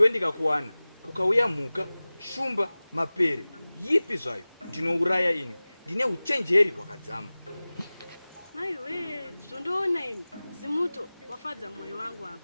ndikakuwana kukauya mhuka, shumba, mapere, yipi zvayo ndinouraya ini. Ndine uchenjeri hwakadzama. Maiwe, zvondoona ini zimuto wafadza mwoyo wangu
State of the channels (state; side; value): inverted; both; correlation -0.98